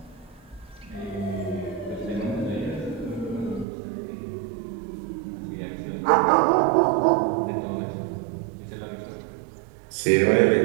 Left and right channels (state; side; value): drops out; left; at 3.7 s